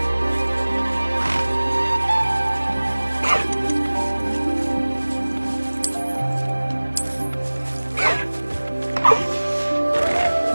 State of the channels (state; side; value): inverted; both; correlation -1.00